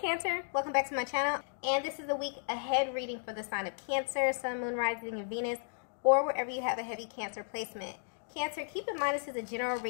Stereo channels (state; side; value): silent; right; digital silence